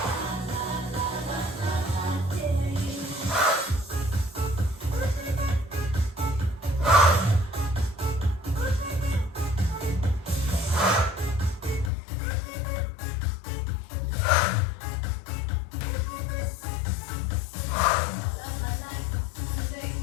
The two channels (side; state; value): right; drops out; at 11.9 s